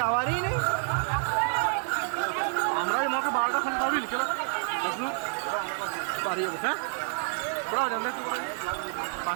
যাওয়ারই নেই। আমরা মাকে 12টা ফোন করবি বিকেলে পারি যাবো। হ্যাঁ, তোরা জানতে একটু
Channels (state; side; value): silent; left; 59 dB below the other